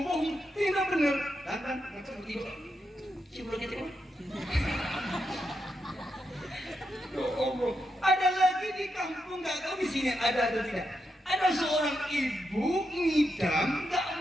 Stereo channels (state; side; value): normal; both; correlation 0.84